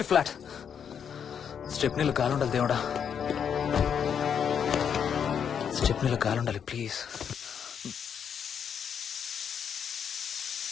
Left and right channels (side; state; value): right; quieter; 7.8 dB